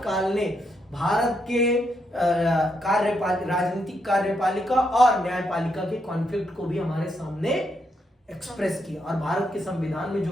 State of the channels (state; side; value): normal; both; correlation 0.79